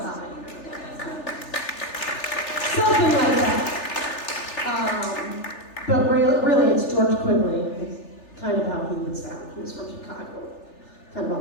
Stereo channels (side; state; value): right; late; 3.4 ms